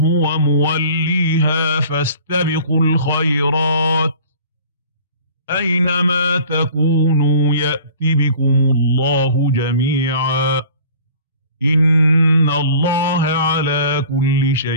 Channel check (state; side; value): inverted; both; correlation -0.46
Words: موليها فاستبقوا الخيرات أينما تكونوا يأت بكم الله جميعا إن الله على كل